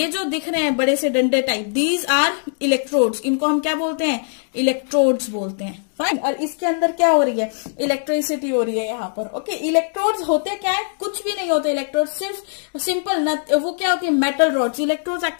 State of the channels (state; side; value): silent; right; digital silence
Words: जो दिख रहे हैं बड़े से डंडे टाइप, दीज आर इलेक्ट्रोड्स। इनको हम क्या बोलते हैं? इलेक्ट्रोड्स बोलते हैं, फाइन। और इसके अंदर क्या हो रही है? इलेक्ट्रिसिटी हो रही है यहाँ पर, ओके। इलेक्ट्रोड्स होते क्या है? कुछ भी नहीं होते इलेक्ट्रोड्स, सिर्फ सिंपल वो क्या होती है? Metal rods. इलेक्ट्रोड्स